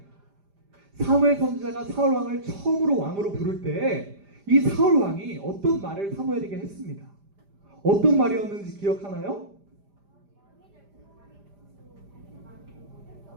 사무엘 선지자가 사울 왕을 처음으로 왕으로 부를 때 이 사울 왕이 어떤 말을 사무엘에게 했습니다. 어떤 말이었는지 기억하나요?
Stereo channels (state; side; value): late; left; 5.0 ms